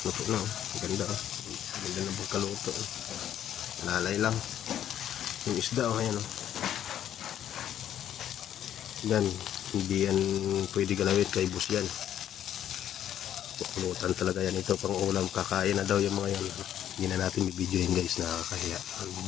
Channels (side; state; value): right; quieter; 10.7 dB